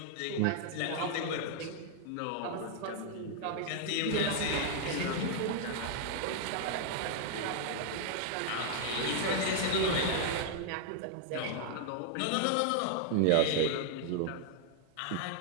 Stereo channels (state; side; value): different; both; correlation 0.00